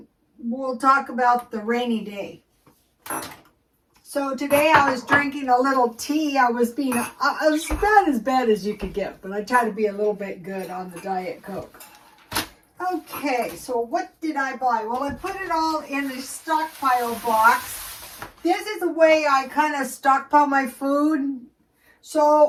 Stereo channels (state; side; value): identical; both; correlation 1.00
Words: we'll talk about the rainy day. So today I was drinking a little tea. I was about as bad as you could get, but I try to be a little bit good on the Diet Coke. Okay, so what did I buy? Well, I put it all in a stockpile box. This is the way I kind of stockpile my food.